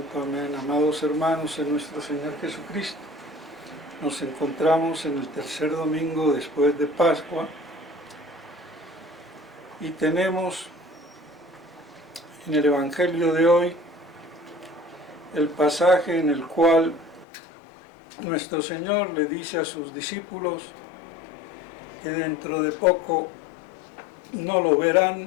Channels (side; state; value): right; drops out; at 17.2 s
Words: Amén. Amados hermanos en nuestro Señor Jesucristo, nos encontramos en el tercer domingo después de Pascua y tenemos en el Evangelio de hoy el pasaje en el cual nuestro Señor le dice a sus discípulos que dentro de poco no lo